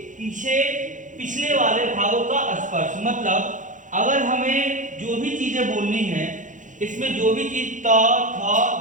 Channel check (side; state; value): left; late; 0.37 ms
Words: पीछे पिछले वाले भागों का स्पर्श। मतलब अगर हमें जो भी चीजें बोलनी है, इसमें जो भी चीज त, थ,